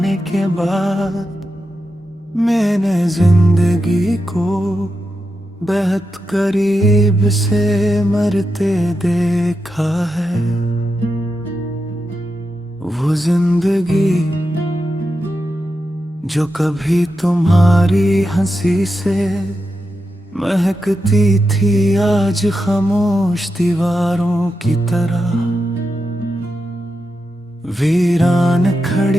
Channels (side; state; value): both; normal; correlation 0.88